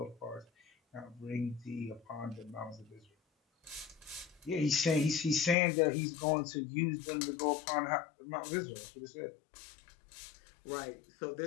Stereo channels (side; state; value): right; drops out; at 5.6 s